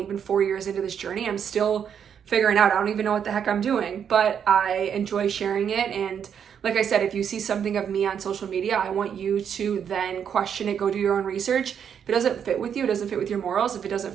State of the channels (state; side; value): quieter; left; 8.0 dB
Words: 4 years into this journey, I'm still figuring out. I don't even know what the heck I'm doing, but I enjoy sharing it. And like I said, if you see something of me on social media, I want you to then question it, go do your own research. If it doesn't fit with you, it doesn't fit with your morals, if it